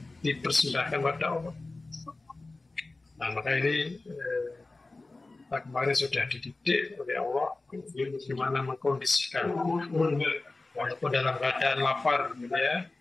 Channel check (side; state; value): right; quieter; 3.2 dB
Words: dipersembahkan pada Allah. Nah, maka ini kemarin sudah dididik oleh Allah bagaimana mengkondisikan walaupun dalam keadaan lapar, gitu ya,